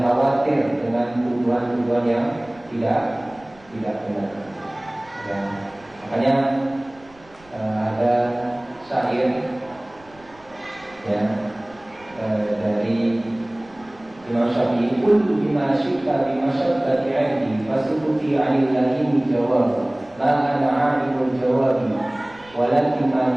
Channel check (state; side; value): noise; right; rumble, 27 dB below the sound